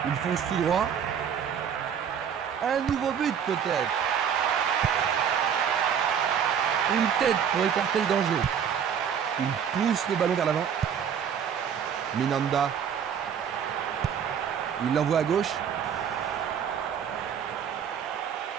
Il fonce tout droit. Un nouveau but peut-être. Une tête pour écarter le danger. Il pousse le ballon vers l'avant. Minanda. Il l'envoie à gauche.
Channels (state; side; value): quieter; left; 8.0 dB